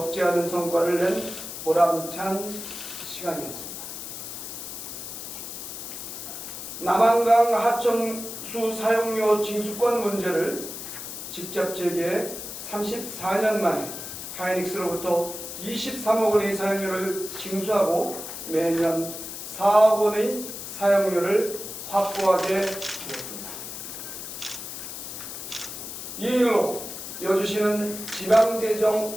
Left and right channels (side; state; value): left; noise; hiss, 9 dB below the sound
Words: 않은 성과를 낸 보람찬 시간이었습니다. 남한강 하천수 사용료 징수권 문제를 직접 제기해 34년 만에 하이닉스로부터 23억 원의 사용료를 징수하고 매년 4억 원의 사용료를 확보하게 되었습니다. 이 일로 여주시는